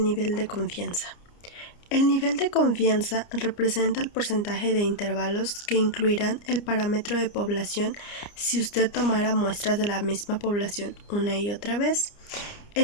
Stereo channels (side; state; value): right; late; 29 ms